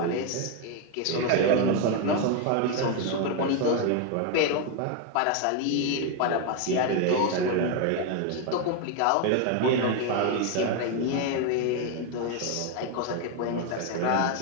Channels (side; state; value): both; different; correlation 0.01